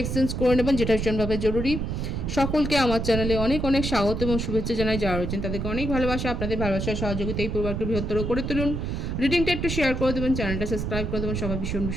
এক্সচেঞ্জ করে নেবেন, যেটা ভীষণভাবে জরুরি। সকলকে আমার চ্যানেলে অনেক অনেক স্বাগত এবং শুভেচ্ছা জানাই। যারা রয়েছেন তাদেরকে অনেক ভালোবাসা, আপনাদের ভালোবাসার সহযোগিতা এই পরিবারকে বৃহত্তর করে তুলুন। রিডিংটা একটু শেয়ার করে দেবেন, চ্যানেলটা সাবস্ক্রাইব করে দেবেন। সবাই ভীষণ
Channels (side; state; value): right; noise; rumble, 3 dB below the sound